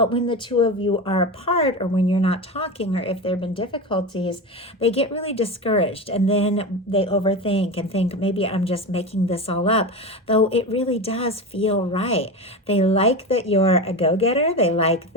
when the two of you are apart, or when you're not talking, or if there have been difficulties, they get really discouraged, and then they overthink and think, maybe I'm just making this all up, though it really does feel right. They like that you're a go-getter. They like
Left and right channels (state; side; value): normal; both; correlation 0.23